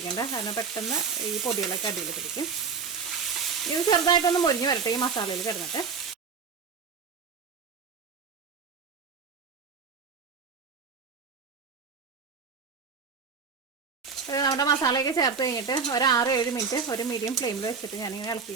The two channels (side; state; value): left; quieter; 5.6 dB